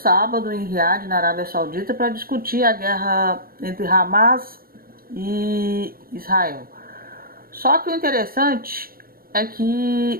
em Riad, na Arábia Saudita, para discutir a guerra entre Hamas e Israel. Só que o interessante é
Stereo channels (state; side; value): late; left; 0.43 ms